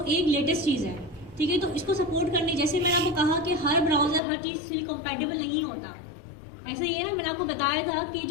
एक लेटेस्ट चीज़ है, ठीक है। तो इसको सपोर्ट करने, जैसे मैंने आपको कहा कि हर ब्राउज़र हर चीज़ से कंपैटिबल नहीं होता, ऐसे ही है ना। मैंने आपको बताया था कि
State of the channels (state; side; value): drops out; right; at 4.2 s